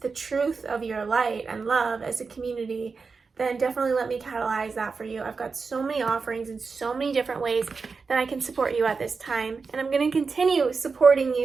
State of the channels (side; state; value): left; quieter; 4.8 dB